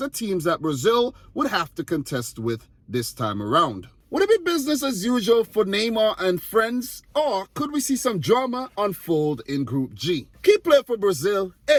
teams that Brazil would have to contest with this time around. Would it be business as usual for Neymar and friends, or could we see some drama unfold in Group G? Key player for Brazil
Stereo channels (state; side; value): identical; both; correlation 1.00